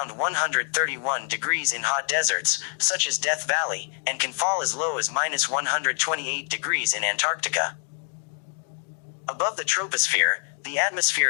131 degrees in hot deserts, such as Death Valley, and can fall as low as -128 degrees in Antarctica. Above the troposphere, the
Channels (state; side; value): silent; right; 61 dB below the other